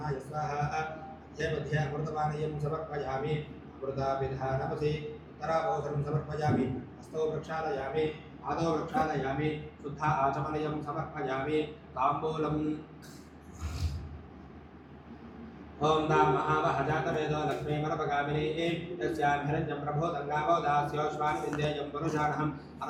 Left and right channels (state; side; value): identical; both; correlation 1.00